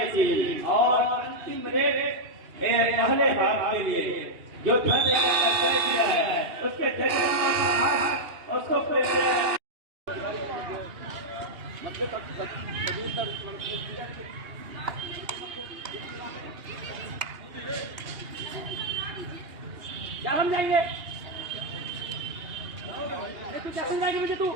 टीम और अंतिम रेट पहले हाफ के लिए जो धरने का तय किया है उसके जरिए उसको क्या हम जाएंगे? तू क्या समझाएगा मुझे? तू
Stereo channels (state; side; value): late; left; 2.8 ms